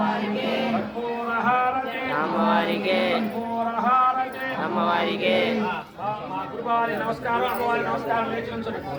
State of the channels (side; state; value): both; identical; correlation 1.00